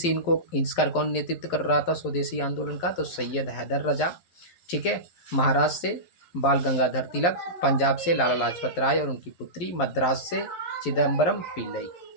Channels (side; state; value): right; late; 11 ms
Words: इसका कौन नेतृत्व कर रहा था स्वदेशी आंदोलन का? तो सैयद हैदर रजा। ठीक है, महाराष्ट्र से बाल गंगाधर तिलक, पंजाब से लाला लाजपत राय और उनकी पुत्री, मद्रास से चिदम्बरम पिल्लई।